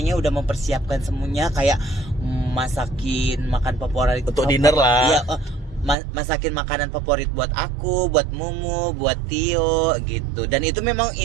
udah mempersiapkan semuanya kayak masakin makan favorit Untuk dinner lah. Iya, masakin makanan favorit buat aku, buat Mumu, buat Tio gitu. Dan itu memang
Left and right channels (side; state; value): left; drops out; at 6.0 s